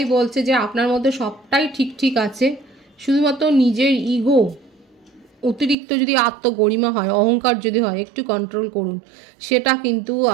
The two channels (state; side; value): drops out; left; at 5.8 s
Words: বলছে যে আপনার মধ্যে সবটাই ঠিক আছে, শুধুমাত্র নিজের ইগো, অতিরিক্ত যদি আত্মগরিমা হয়, অহংকার যদি হয়, একটু কন্ট্রোল করুন। সেটা কিন্তু